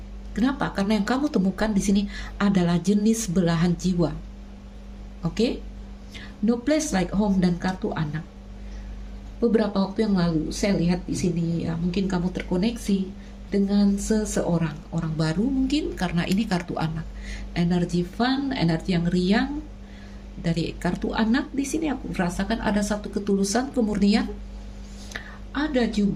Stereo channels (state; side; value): identical; both; correlation 1.00